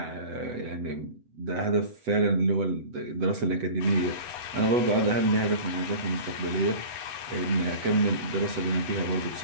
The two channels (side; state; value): left; late; 8.0 ms